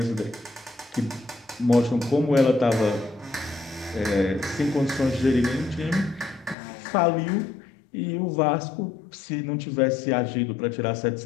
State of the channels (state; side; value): drops out; right; at 6.6 s